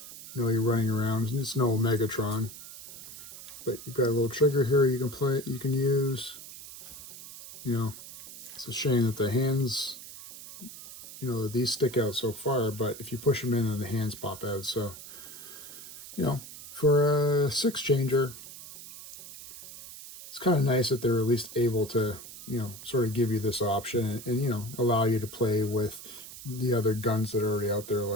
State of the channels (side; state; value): right; noise; hiss, 14 dB below the sound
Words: you know, you're running around. It's no Megatron. But you've got a little trigger here you can play, you can use. You know, it's a shame that the hands, you know, these stick out so far, but if you push them in, then the hands pop out. So, you know, for a six changer, it's kind of nice that they're at least able to, you know, sort of give you this option and you know, allow you to play with the other guns that are already out there,